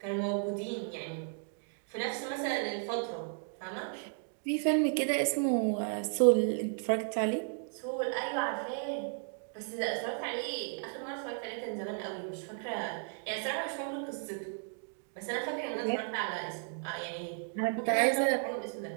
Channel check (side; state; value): left; silent; 55 dB below the other